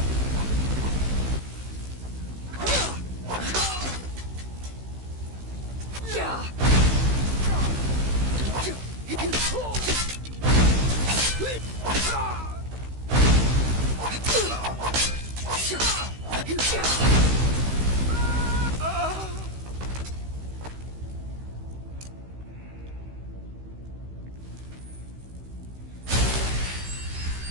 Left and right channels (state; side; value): late; left; 16 ms